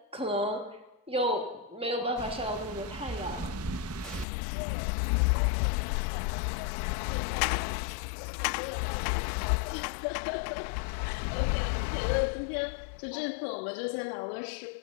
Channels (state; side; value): drops out; right; at 4.2 s